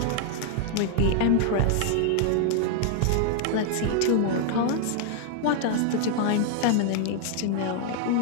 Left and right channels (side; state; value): both; different; correlation 0.00